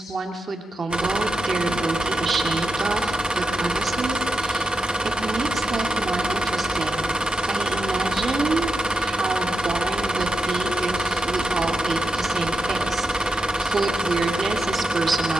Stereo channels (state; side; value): normal; both; correlation 0.87